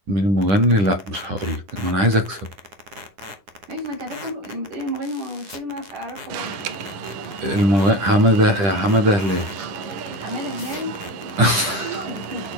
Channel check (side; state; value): left; late; 10 ms